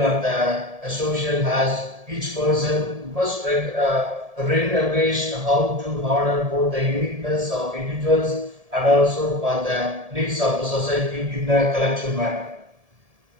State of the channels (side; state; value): left; late; 1.7 ms